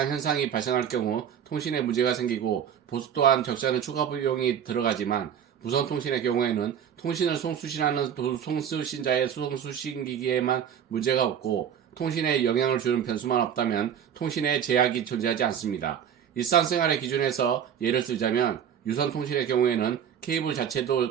현상이 발생할 경우 통신에 문제가 생기고 보수 또한 적지 않은 추가 비용이 들어가지만 무선 통신의 경우에는 통신을 송수신하는 송수신자의 송수신기기에만 문제가 없고 통신에 영향을 주는 변수만 없다면 통신에 제약이 존재하지 않습니다. 일상생활의 기준에서 예를 들자면 유선 통신의 경우에는 케이블 자체도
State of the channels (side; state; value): left; quieter; 8.7 dB